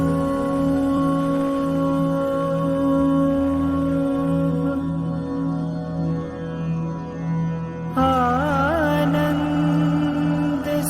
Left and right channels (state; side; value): identical; both; correlation 1.00